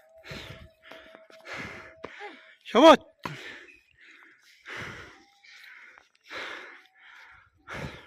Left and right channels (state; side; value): identical; both; correlation 1.00